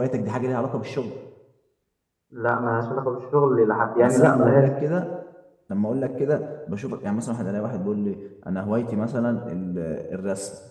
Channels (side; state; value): both; identical; correlation 1.00